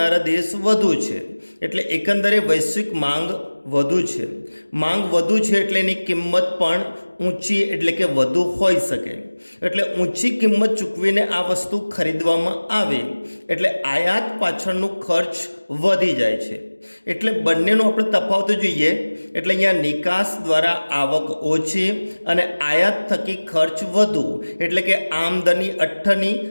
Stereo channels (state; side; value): inverted; both; correlation -1.00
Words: દેશ વધુ છે, એટલે એકંદરે વૈશ્વિક માંગ વધુ છે. માંગ વધુ છે એટલે એની કિંમત પણ ઊંચી એટલે કે વધુ હોઈ શકે. એટલે ઊંચી કિંમત ચૂકવીને આ વસ્તુ ખરીદવામાં આવે એટલે આયાત પાછળનું ખર્ચ વધી જાય છે. એટલે બંનેનો આપણે તફાવત જોઈએ એટલે અહીંયા નિકાસ દ્વારા આવક ઓછી અને આયાત થકી ખર્ચ વધુ, એટલે કે આમદની અઠ્ઠની